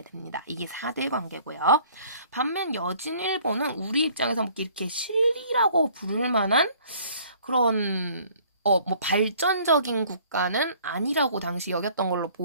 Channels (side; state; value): both; inverted; correlation -0.56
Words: 됩니다. 이게 4대 관계고요. 반면 여진 일본은 우리 입장에서 뭐 이렇게 실리라고 부를 만한 그런 뭐 발전적인 국가는 아니라고 당시 여겼던 걸로